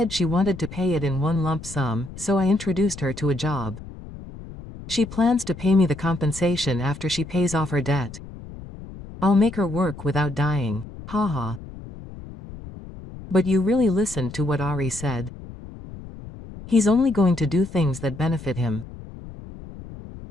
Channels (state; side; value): noise; left; rumble, 14 dB below the sound